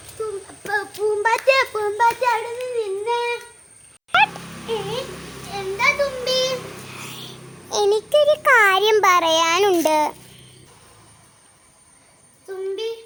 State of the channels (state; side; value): identical; both; correlation 1.00